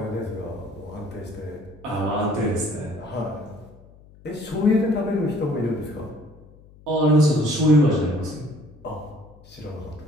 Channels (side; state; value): left; noise; hum, 24 dB below the sound